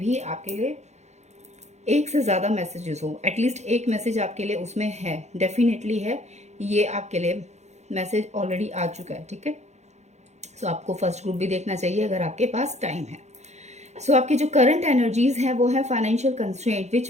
आपके लिए एक से ज़्यादा मैसेजेस हो, एटलीस्ट एक मैसेज आपके लिए उसमें है, डेफिनेटली है, ये आपके लिए मैसेज ऑलरेडी आ चुका है। ठीक है, सो आपको फर्स्ट ग्रुप भी देखना चाहिए अगर आपके पास टाइम है। सो आपकी जो करंट एनर्जीज है वो है फाइनेंशियल कंस्ट्रेंट,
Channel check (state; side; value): late; left; 0.33 ms